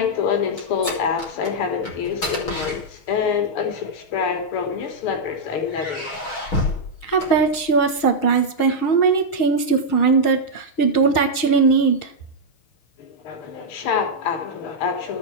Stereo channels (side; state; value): right; late; 6.4 ms